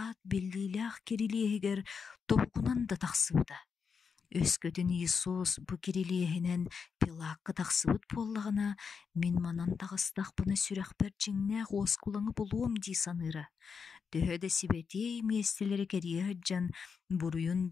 беллилях керилиегер топкунан да тақсыбыда. Өскөтін Иисус бу керилиегінен Пилатқа тақсыбыт боллағына мен манан тағыстақ бұны сүрәқпер жеңнәқ оскулаңы болуым дей саныры. Төхөді сибетей местелері керие hyджан буруйун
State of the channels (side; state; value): right; quieter; 5.9 dB